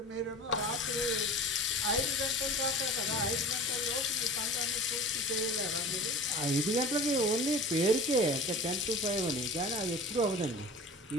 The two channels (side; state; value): both; normal; correlation 0.38